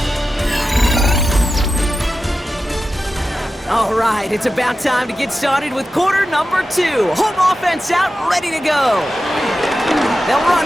All right, it's about time to get started with quarter number 2. Home offense out, ready to go. They'll run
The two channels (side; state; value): both; normal; correlation 0.92